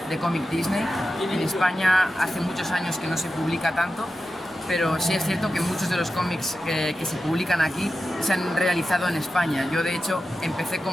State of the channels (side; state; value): both; normal; correlation 0.92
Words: de cómic Disney. En España hace muchos años que no se publica tanto, pero sí es cierto que muchos de los cómics que se publican aquí se han realizado en España. Yo de hecho empecé